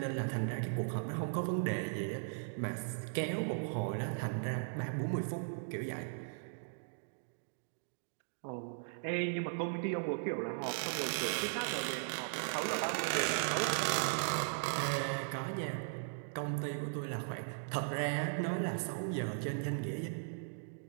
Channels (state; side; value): silent; left; digital silence